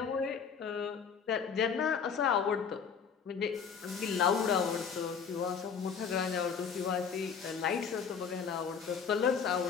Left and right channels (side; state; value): right; quieter; 6.6 dB